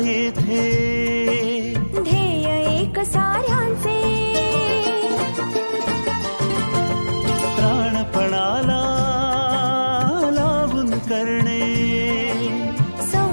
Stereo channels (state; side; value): inverted; both; correlation -1.00